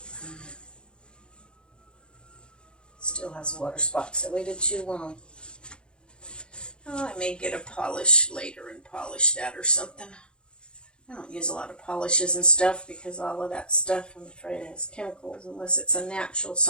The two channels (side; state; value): right; late; 0.052 ms